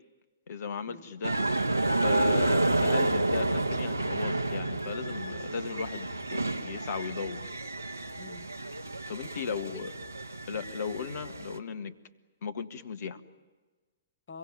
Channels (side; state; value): both; inverted; correlation -0.85